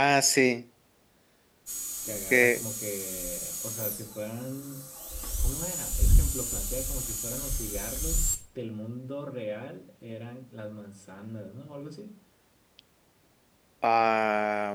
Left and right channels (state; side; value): identical; both; correlation 1.00